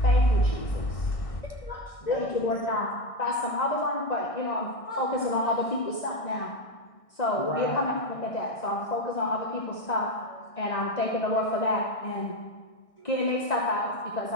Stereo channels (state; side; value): late; right; 1.6 ms